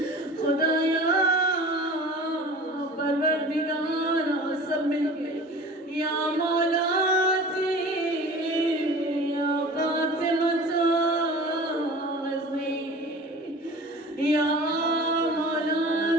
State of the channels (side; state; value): both; normal; correlation 0.40